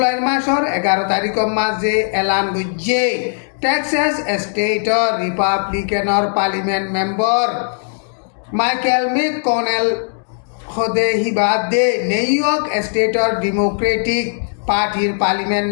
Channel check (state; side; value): silent; right; digital silence